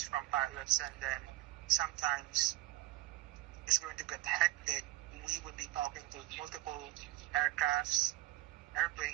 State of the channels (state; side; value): quieter; left; 18.4 dB